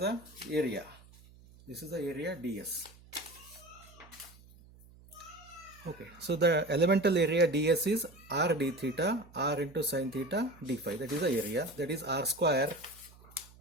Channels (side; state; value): right; noise; hum, 23 dB below the sound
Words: area. This is the area ds. Okay, so the elemental area ds is r d theta, r into sine theta d phi. That is the area. That is r square